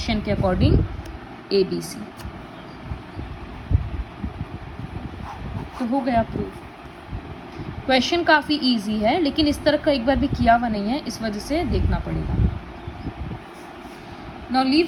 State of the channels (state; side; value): identical; both; correlation 1.00